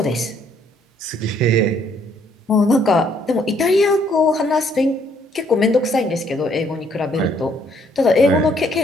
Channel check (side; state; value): both; normal; correlation 0.66